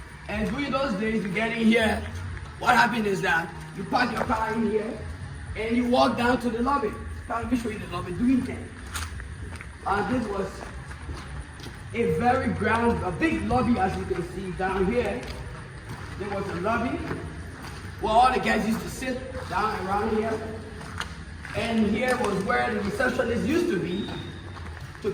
And during those days, you get in here, what happened is that you park your car in here and you walk down to the lobby. Let me show you the lobby doing things. This was a big lobby, as you can see down here. There was a lobby where all the guys used to sit down around here. And here was where the receptionist used to be to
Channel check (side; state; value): both; identical; correlation 1.00